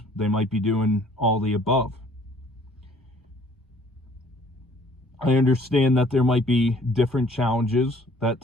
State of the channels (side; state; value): both; normal; correlation 0.57